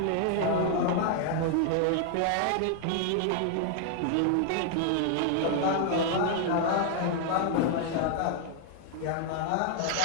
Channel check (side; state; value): both; different; correlation 0.00